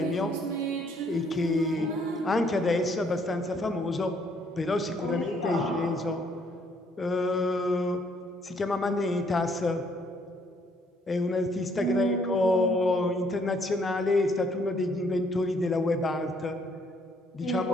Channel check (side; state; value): both; normal; correlation 0.66